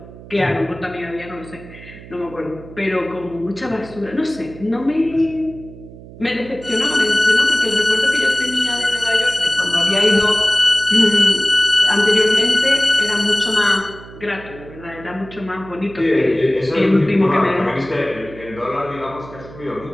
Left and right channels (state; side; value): noise; right; hum, 17 dB below the sound